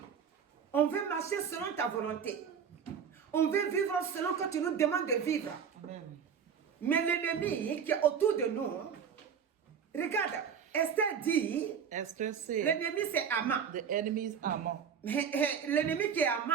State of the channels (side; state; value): left; quieter; 7.3 dB